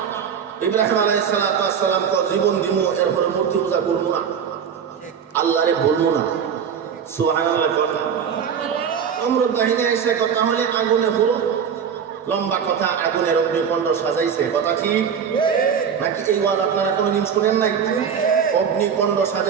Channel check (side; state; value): left; quieter; 7.4 dB